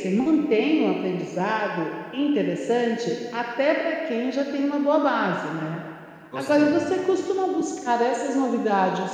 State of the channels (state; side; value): identical; both; correlation 1.00